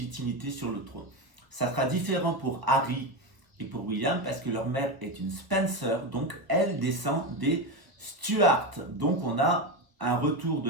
sur le trône. Ça sera différent pour Harry et pour William, parce que leur mère est une Spencer, donc elle descend des Stuart. Donc on a un retour de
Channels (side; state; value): left; late; 1.3 ms